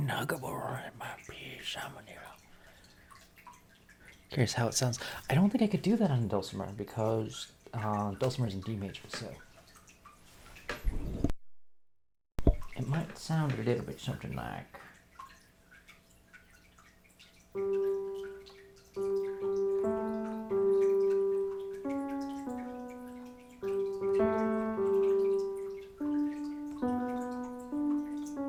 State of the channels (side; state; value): both; identical; correlation 1.00